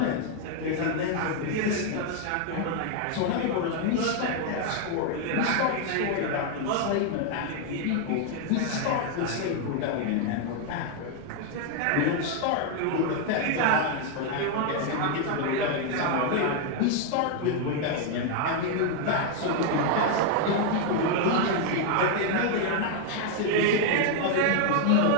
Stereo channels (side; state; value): both; different; correlation 0.00